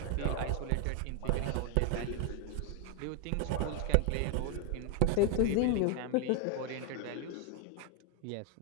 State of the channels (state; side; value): different; both; correlation 0.01